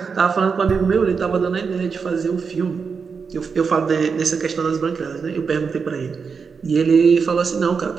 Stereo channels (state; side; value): quieter; left; 5.6 dB